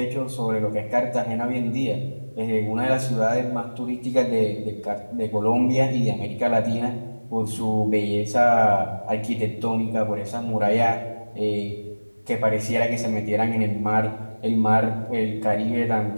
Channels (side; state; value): both; inverted; correlation -1.00